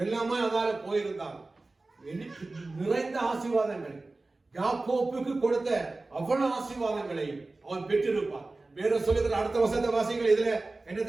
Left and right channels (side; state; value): left; quieter; 3.2 dB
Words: அதால போயிருந்தான். நிறைந்த ஆசீர்வாதங்கள், யாக்கோப்புக்கு கொடுத்த அவ்வளவு ஆசீர்வாதங்களை அவன் பெற்றிருப்பான். வேற சொல்லுகிற அடுத்த வசந்த வாசிகள் இதுல